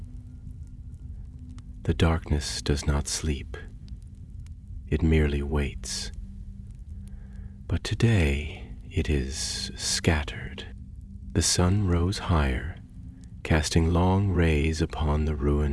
The darkness does not sleep. It merely waits. But today it is scattered. The sun rose higher, casting long rays upon the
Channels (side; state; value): both; identical; correlation 1.00